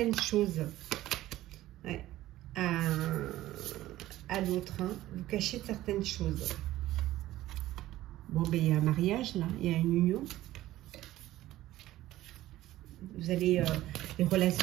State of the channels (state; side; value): quieter; left; 15.3 dB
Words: choses. Ouais. À l'autre, hein. Vous cachez certaines choses. Bon, ben, il y a un mariage, là. Il y a une union. Vous allez, vous